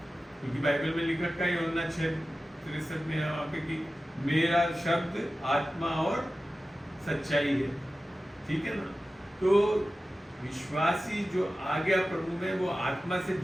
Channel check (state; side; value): normal; both; correlation 0.94